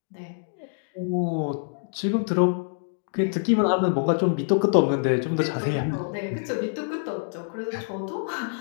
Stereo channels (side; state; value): right; silent; digital silence